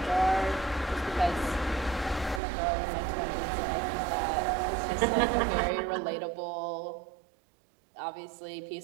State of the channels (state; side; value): drops out; left; at 2.4 s